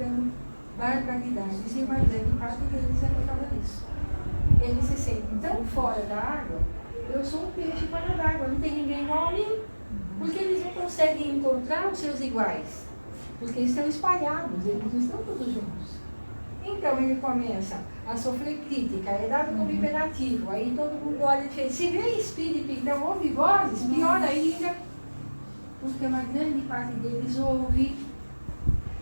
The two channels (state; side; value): inverted; both; correlation -1.00